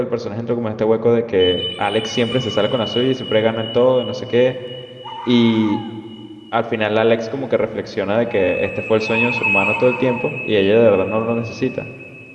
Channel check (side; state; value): both; identical; correlation 1.00